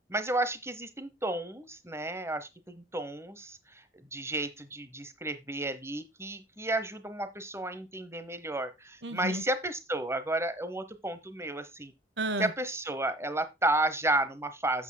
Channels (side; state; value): both; normal; correlation 0.47